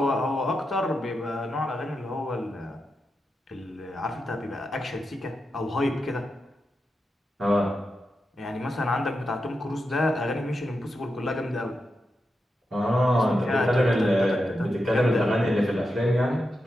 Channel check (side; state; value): both; normal; correlation 0.88